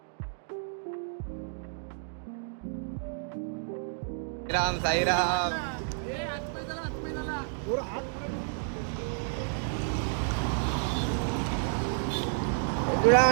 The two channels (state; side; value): silent; left; digital silence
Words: राम साईराम. तुला